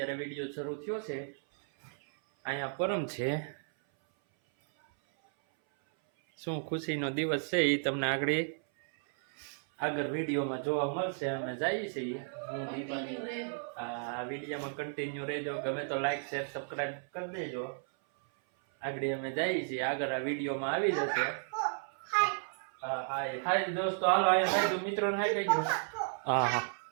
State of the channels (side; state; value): left; silent; 55 dB below the other